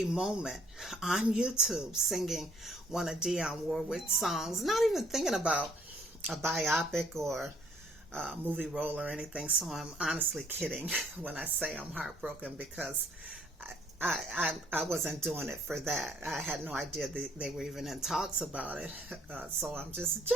moment on YouTube, singing one of Dionne Warwick's songs, not even thinking about a biopic or movie role or anything. So I'm honestly kidding when I say I'm heartbroken, because I wasn't doing it for that. I had no idea they were even in talks about it. So I'm just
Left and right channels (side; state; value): both; normal; correlation 0.64